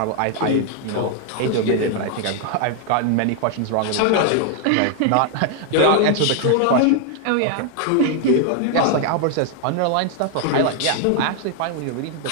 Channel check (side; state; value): both; different; correlation 0.00